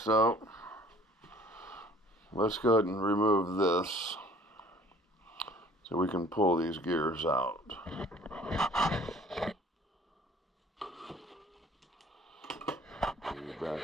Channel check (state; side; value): normal; both; correlation 0.53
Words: so let's go ahead and remove this so we can pull these gears out.